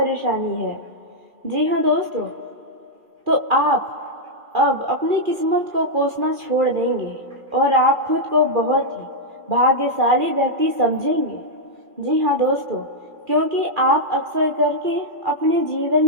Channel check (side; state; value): left; late; 2.4 ms